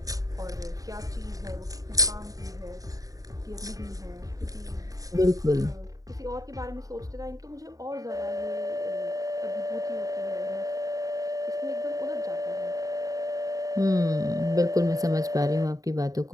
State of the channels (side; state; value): left; late; 0.17 ms